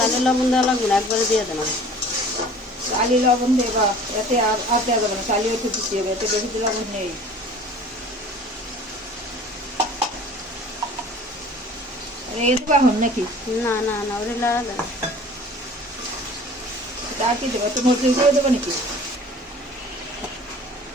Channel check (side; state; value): both; normal; correlation 0.46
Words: লবণ দেওয়া লাগবে না, একবারে দিয়ে দেন। চালি লবণ দেবা, এতে আর দেওয়া যাবে না, চালিও একটু দিতে হবে, এতে বেশি লবণ নেই। এই দেবা হন নাকি? না না না, ওটা লাগা দেন। আর কি দেবো? একটু মরিচ করে দেবো নাকি?